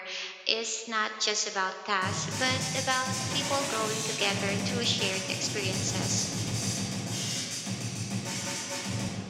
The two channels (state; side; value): identical; both; correlation 1.00